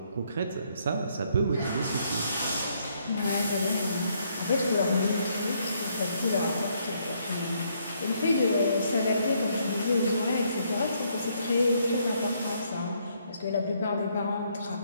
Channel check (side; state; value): both; inverted; correlation -0.71